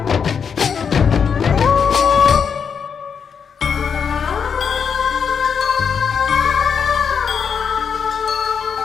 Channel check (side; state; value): right; quieter; 6.7 dB